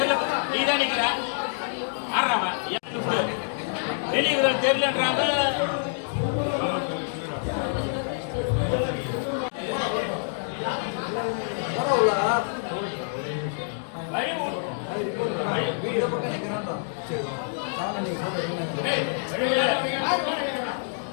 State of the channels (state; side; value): silent; right; digital silence